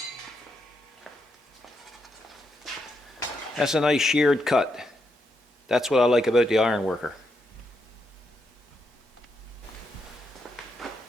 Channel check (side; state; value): both; normal; correlation 0.81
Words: That's a nice sheared cut. That's what I like about the iron worker.